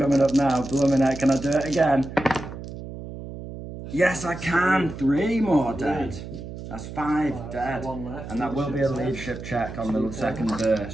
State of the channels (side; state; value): right; noise; hum, 11 dB below the sound